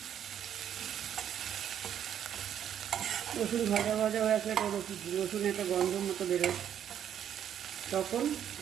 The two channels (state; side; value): quieter; left; 9.6 dB